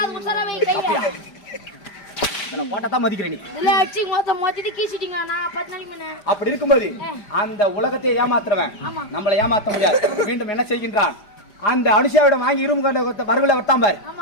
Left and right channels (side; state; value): right; late; 5.0 ms